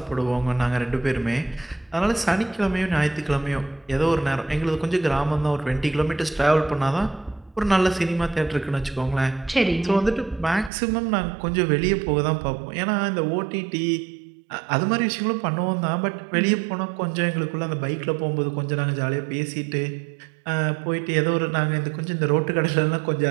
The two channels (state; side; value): drops out; left; at 10.7 s